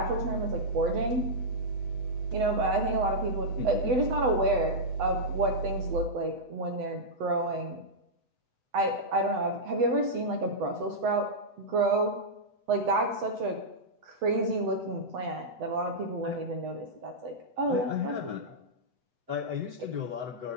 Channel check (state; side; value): late; left; 8.0 ms